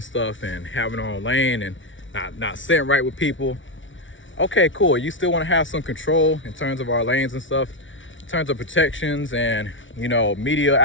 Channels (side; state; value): right; late; 0.56 ms